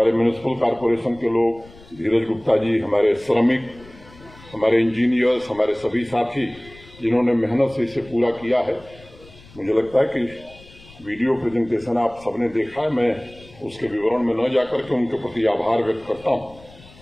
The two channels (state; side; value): noise; left; rumble, 23 dB below the sound